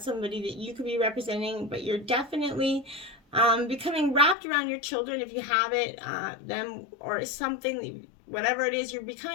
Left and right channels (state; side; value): drops out; right; at 4.4 s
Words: somebody that you could be representing, but you're definitely becoming wrapped around your children if you have it, them, or something, whatever it is, you're